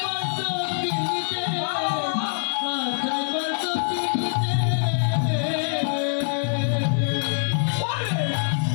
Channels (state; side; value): silent; right; digital silence